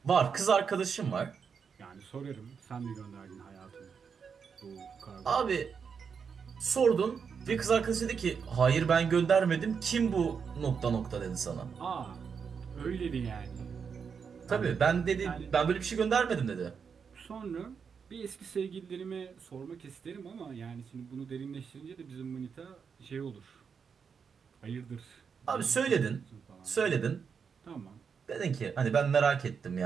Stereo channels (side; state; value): left; quieter; 6.3 dB